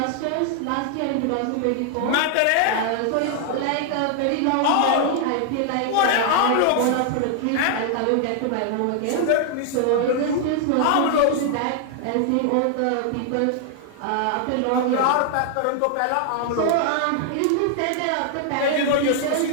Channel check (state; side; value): different; both; correlation 0.00